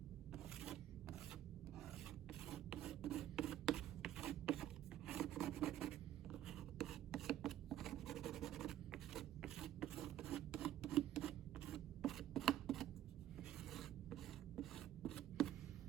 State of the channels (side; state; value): left; quieter; 12.4 dB